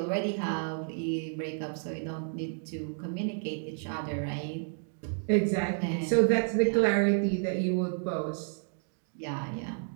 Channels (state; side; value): silent; left; 57 dB below the other